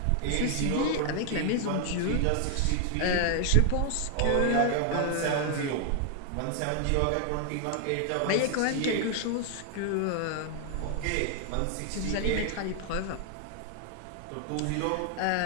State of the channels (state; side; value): different; both; correlation 0.00